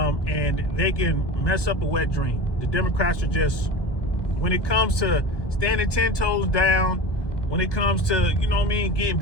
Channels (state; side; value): late; right; 1.2 ms